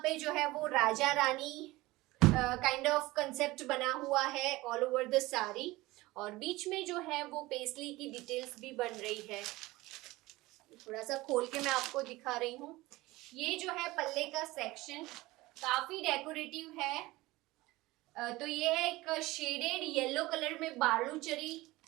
पे जो है वो Raja Rani kind of concept बना हुआ है ऑल ओवर द साड़ी. और बीच में जो है वो पेस्ली की डिटेल्स भी बन रही है. थोड़ा सा खोल के मैं आपको दिखा रही हूँ. ये जो है पल्ले का सेक्शन काफी डेकोरेटिव है. तो ये है एक शेडेड येलो कलर में बालूचरी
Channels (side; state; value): left; quieter; 19.8 dB